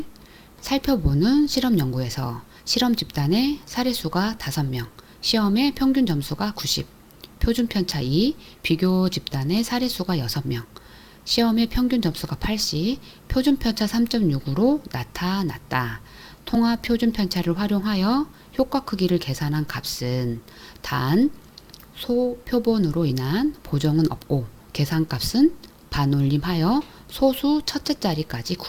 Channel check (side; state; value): both; identical; correlation 1.00